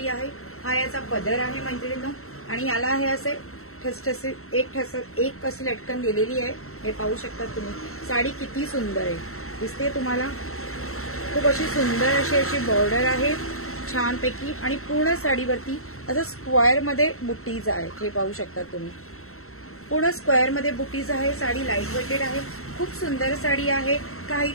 आहे. हा याचा पदर आहे मैत्रिणींनो, आणि याला हे असे ठसठसे एक अशी लटकन दिलेली आहे. हे पाहू शकता तुम्ही. साडी किती सुंदर आहे दिसते तुम्हाला. खूप अशी सुंदर अशी बॉर्डर आहे छानपैकी, आणि पूर्ण साडीवरती असं स्क्वेअर मध्ये बुट्टीज आहेत. हे पाहू शकता तुम्ही. पूर्ण स्क्वेअर मध्ये बुटीज आहे. साडी लाईट वेटेड आहे. खूप सुंदर साडी आहे.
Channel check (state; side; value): late; right; 0.63 ms